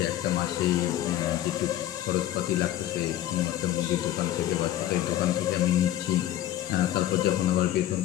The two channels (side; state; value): right; quieter; 13.0 dB